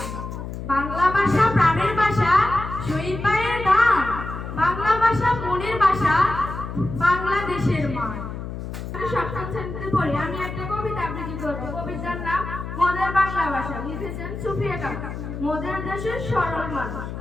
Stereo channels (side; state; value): left; noise; hum, 7 dB below the sound